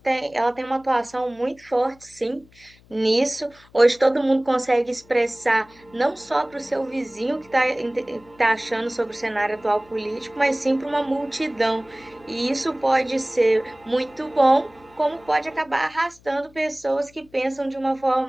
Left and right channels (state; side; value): noise; left; hum, 28 dB below the sound